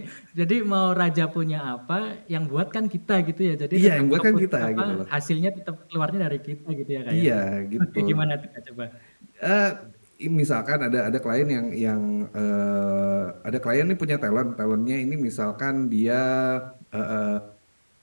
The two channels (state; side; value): inverted; both; correlation -1.00